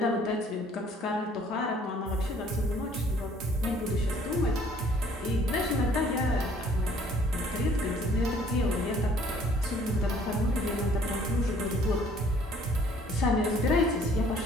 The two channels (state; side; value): normal; both; correlation 0.58